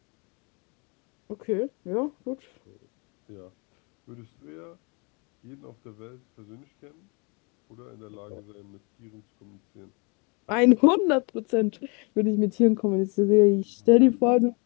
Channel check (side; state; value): right; quieter; 32.2 dB